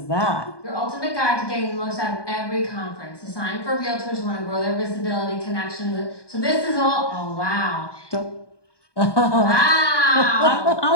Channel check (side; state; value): right; late; 1.2 ms